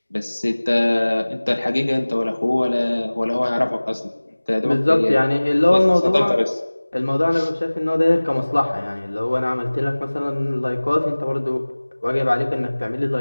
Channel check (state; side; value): inverted; both; correlation -1.00